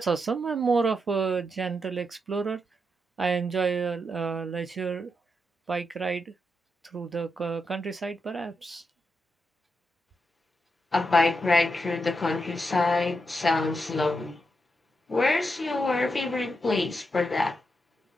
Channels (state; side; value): normal; both; correlation 0.84